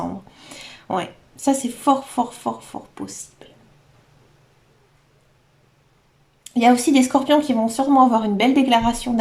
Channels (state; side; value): identical; both; correlation 1.00